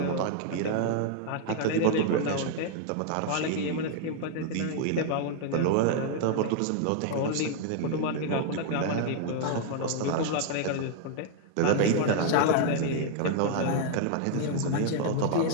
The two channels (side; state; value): both; different; correlation 0.00